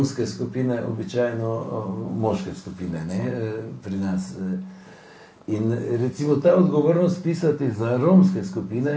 skupine običajno moške skupine, ne, pri nas. In recimo ta odgovornost pisati za romske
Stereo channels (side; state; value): both; identical; correlation 1.00